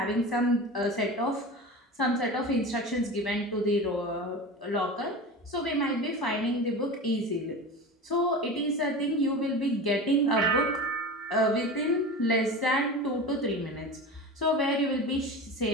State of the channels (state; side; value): normal; both; correlation 0.30